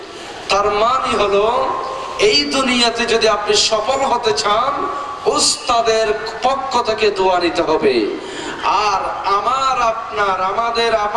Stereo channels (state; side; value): identical; both; correlation 1.00